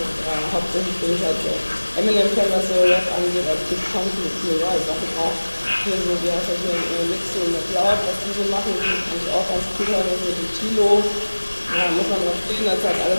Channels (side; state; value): both; inverted; correlation -1.00